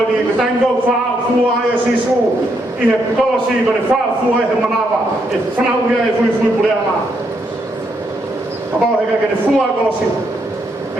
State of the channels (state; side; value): normal; both; correlation 0.77